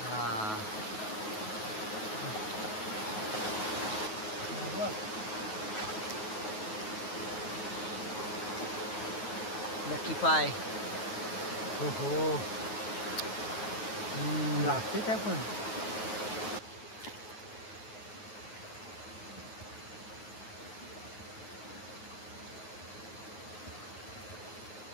हा लकी पाय हो हो लागते काय पण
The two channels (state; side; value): late; right; 9.3 ms